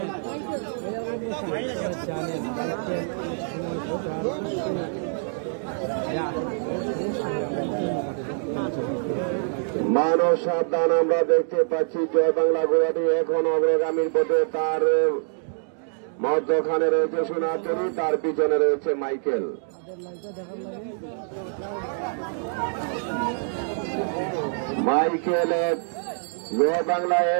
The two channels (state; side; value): silent; left; digital silence